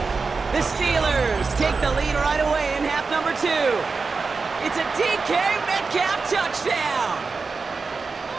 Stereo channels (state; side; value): quieter; left; 4.5 dB